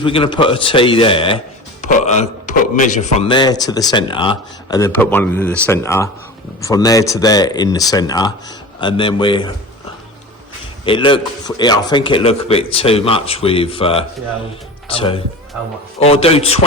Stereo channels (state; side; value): normal; both; correlation 0.33